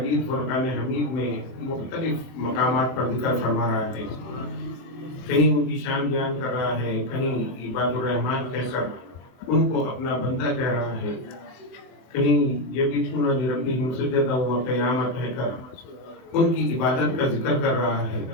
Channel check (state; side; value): late; right; 23 ms